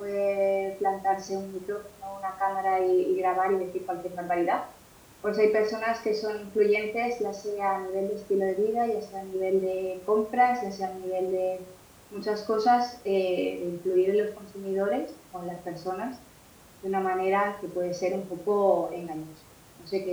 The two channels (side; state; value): both; identical; correlation 1.00